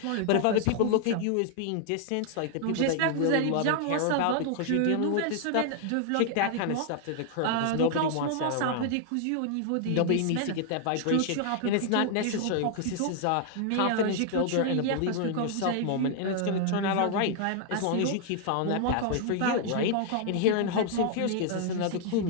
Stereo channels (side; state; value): both; different; correlation 0.00